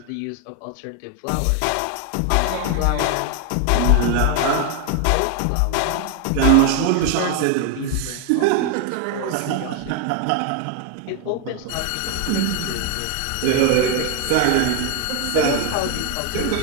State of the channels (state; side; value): different; both; correlation 0.01